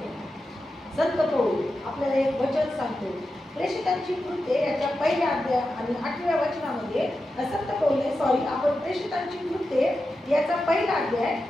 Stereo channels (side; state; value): both; normal; correlation 0.90